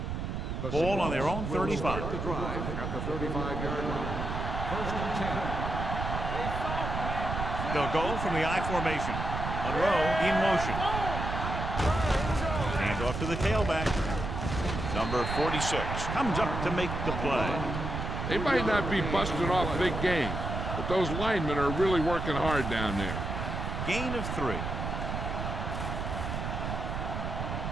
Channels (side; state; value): right; noise; rumble, 4 dB below the sound